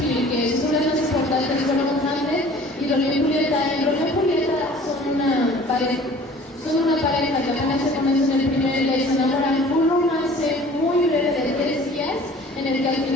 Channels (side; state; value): both; normal; correlation 0.48